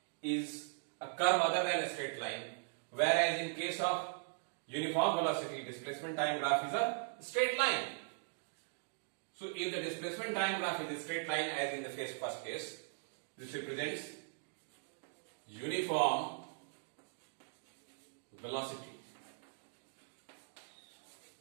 is a curve other than a straight line, whereas in case of uniform velocity, displacement time graph is a straight line. So if the displacement time graph is a straight line as in the first case, this represents uniform velocity.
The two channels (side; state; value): left; silent; digital silence